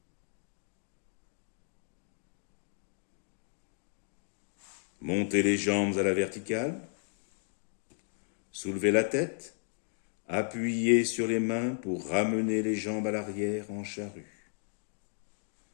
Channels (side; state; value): right; silent; 55 dB below the other